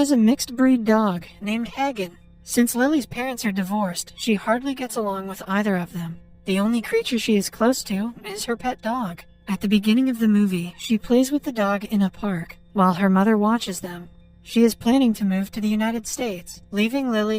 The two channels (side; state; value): both; identical; correlation 1.00